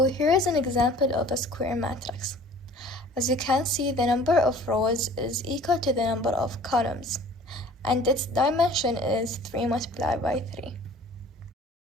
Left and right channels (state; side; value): normal; both; correlation 0.48